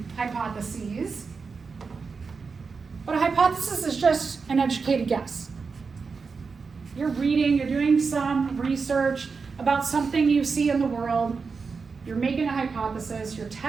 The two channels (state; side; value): quieter; left; 5.0 dB